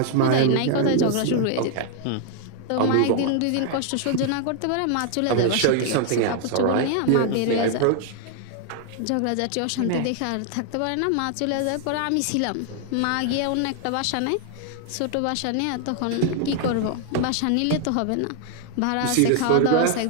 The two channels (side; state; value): both; different; correlation 0.00